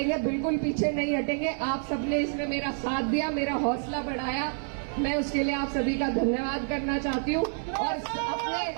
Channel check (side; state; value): left; silent; 59 dB below the other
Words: बिल्कुल पीछे नहीं हटेंगे। आप सबने इसमें मेरा साथ दिया, मेरा हौसला बढ़ाया, मैं उसके लिए आप सभी का धन्यवाद करना चाहती हूँ। और अपने